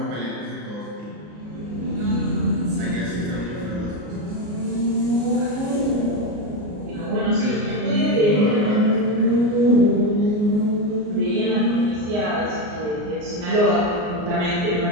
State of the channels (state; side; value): late; left; 34 ms